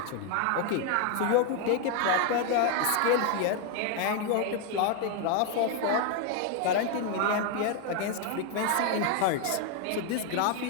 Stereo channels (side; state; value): both; different; correlation 0.01